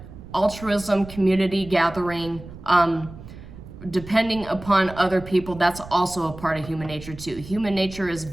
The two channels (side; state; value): right; noise; rumble, 15 dB below the sound